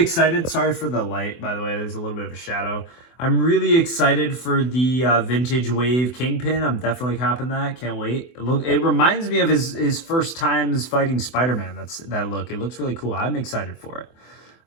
Sorry for the light, by the way. There's a little bit of a shadow. I'm really excited for the Vintage Wave Kingpin. I'm definitely copping that. Can't wait. It reminds me of his first times fighting Spider-Man. That look. It looks really cool. I'm excited for it.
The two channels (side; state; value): right; late; 24 ms